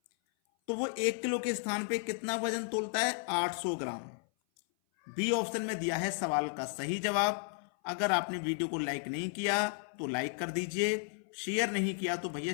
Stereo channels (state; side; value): silent; right; 55 dB below the other